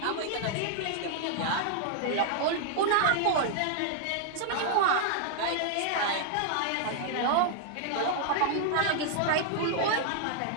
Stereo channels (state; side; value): different; both; correlation 0.00